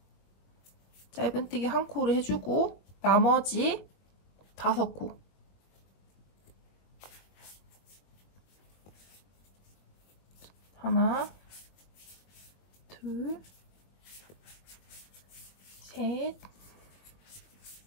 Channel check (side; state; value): right; late; 21 ms